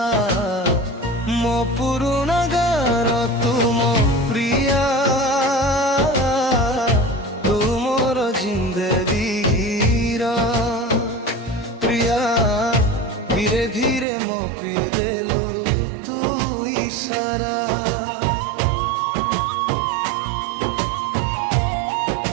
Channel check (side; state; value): left; drops out; at 14.1 s